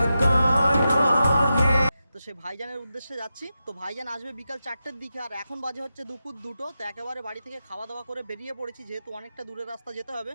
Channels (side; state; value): both; inverted; correlation -0.90